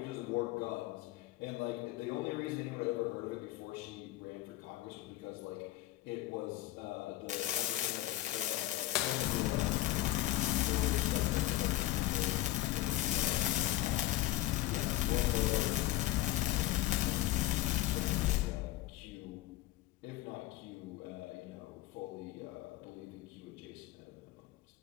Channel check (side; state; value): right; quieter; 15.9 dB